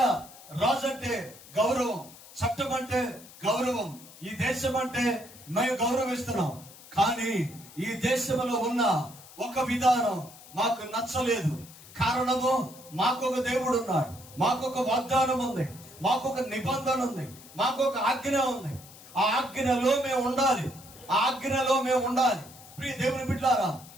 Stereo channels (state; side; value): noise; left; hiss, 20 dB below the sound